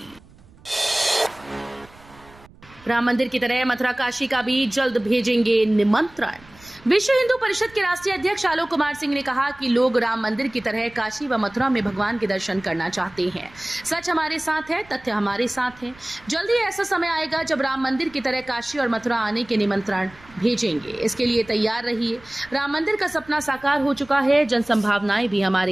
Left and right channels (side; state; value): right; noise; rumble, 25 dB below the sound